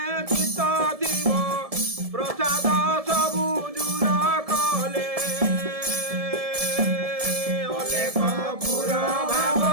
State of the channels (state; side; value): late; left; 1.7 ms